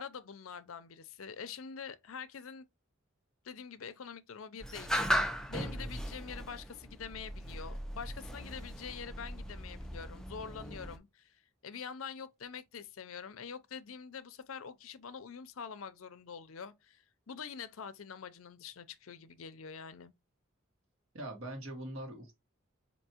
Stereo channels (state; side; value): normal; both; correlation 0.55